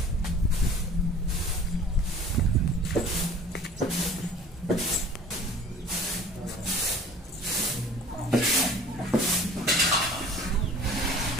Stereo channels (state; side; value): normal; both; correlation 0.46